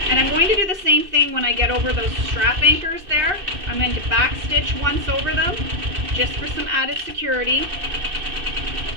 And I'm going to do the same thing when I get over those strap anchors there. I'm going to back stitch once over them just for some added security.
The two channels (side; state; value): left; late; 2.6 ms